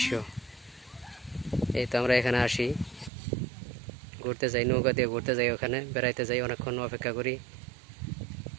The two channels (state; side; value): drops out; left; at 3.1 s